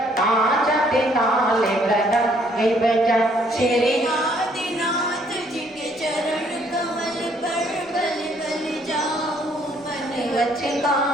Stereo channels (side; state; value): both; normal; correlation 0.65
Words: आचते ताले प्रदम विभजन श्री आदिनाथ जी के चरण कमल पर बल बल जाऊं मन